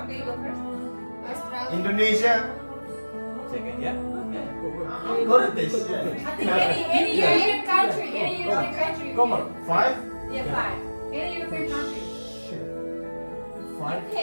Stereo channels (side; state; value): both; inverted; correlation -1.00